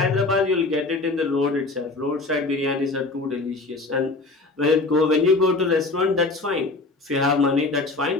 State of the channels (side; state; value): right; quieter; 3.4 dB